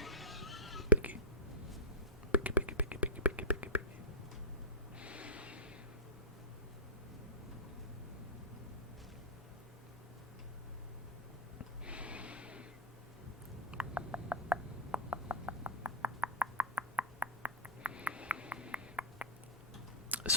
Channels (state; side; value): normal; both; correlation -0.08